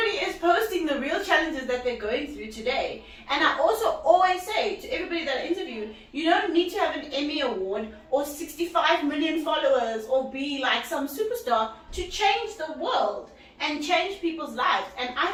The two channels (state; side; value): identical; both; correlation 1.00